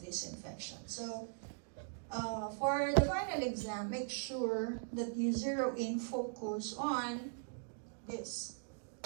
this infection. So for the final exam, make sure that you zero in focus on this,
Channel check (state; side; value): silent; left; digital silence